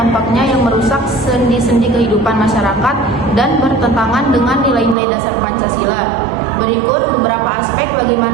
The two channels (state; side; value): drops out; left; at 5.0 s